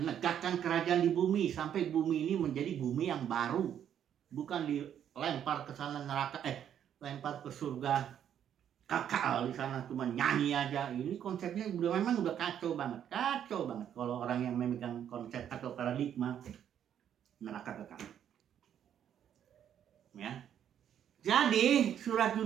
kerajaan di bumi sampai bumi ini menjadi bumi yang baru, bukan dilempar ke sana neraka, lempar ke surga kekal di sana cuma nyanyi aja. Ini konsepnya memang udah kacau banget kalau orang yang memegang konsep atau paradigma neraka kekal. Ya, jadi surat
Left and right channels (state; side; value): quieter; left; 9.6 dB